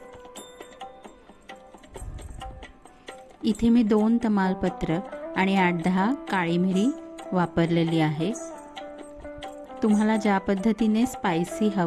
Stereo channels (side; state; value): both; identical; correlation 1.00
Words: इथे मी 2 तमालपत्र आणि 8-10 काळी मिरी वापरलेली आहे. तुम्हाला ज्या पद्धतीने स्पायसी